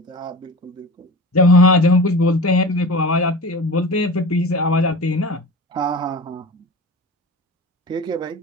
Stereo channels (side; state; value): both; normal; correlation 0.34